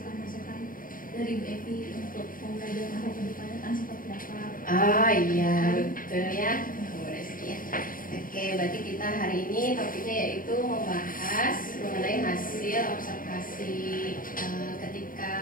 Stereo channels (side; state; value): right; late; 0.40 ms